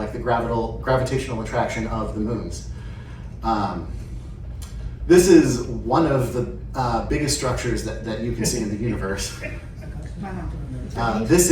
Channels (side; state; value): both; identical; correlation 1.00